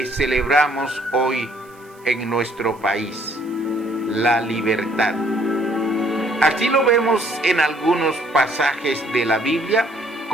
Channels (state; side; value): noise; right; hiss, 29 dB below the sound